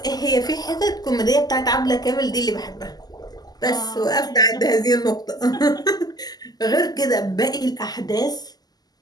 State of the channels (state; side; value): late; right; 0.19 ms